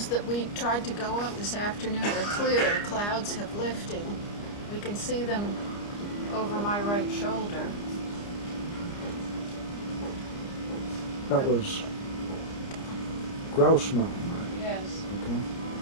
that we tried to go up this afternoon are clear. The clouds have lifted. We can see them over my right shoulder. That was Grouse Mountain, right? Yes. Okay.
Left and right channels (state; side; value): late; right; 29 ms